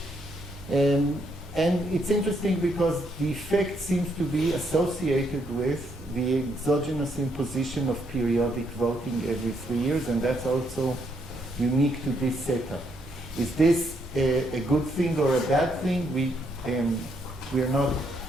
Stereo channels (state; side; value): normal; both; correlation 0.74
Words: And it's interesting because the effect seems to be associated with the exogenous imposition of periodic voting every 3 years, and that's also unique to this setup. Is this a good thing or a bad thing? We're